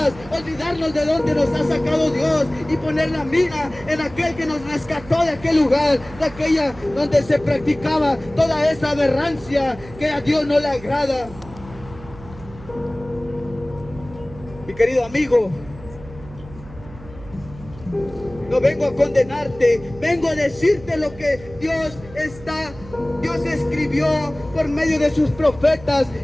olvidarnos de donde nos ha sacado Dios y poner la mira en aquel que nos rescató de aquel lugar, de aquella donde se practicaba toda esa aberrancia que a Dios no le agrada. Mi querido amigo, no vengo a condenarte, vengo a decirte lo que Dios escribió por medio de sus profetas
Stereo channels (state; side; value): noise; right; hum, 18 dB below the sound